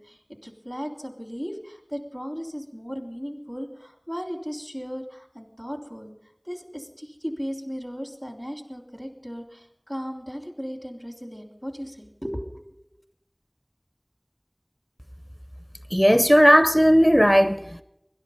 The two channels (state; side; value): identical; both; correlation 1.00